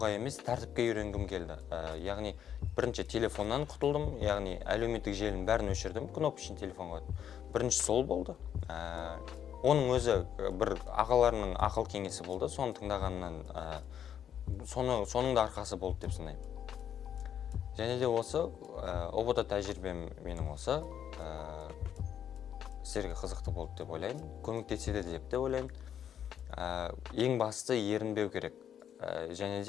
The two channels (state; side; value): quieter; right; 9.3 dB